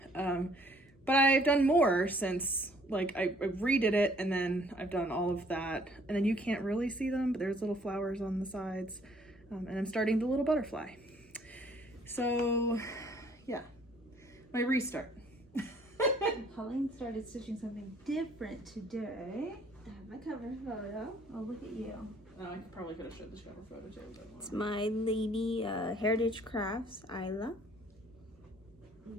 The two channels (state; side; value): normal; both; correlation 0.60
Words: But I've done more since, like, I redid it, and then I've done all of that. And then you can't really see them, but there's little flowers on the sides. And I'm starting the little butterfly. So, yeah. My restart. Pauline started stitching something different today. I have my cover photo. Oh, look at you. I probably could have showed this cover photo too. It's my lady Heritage Crafts, Isla. I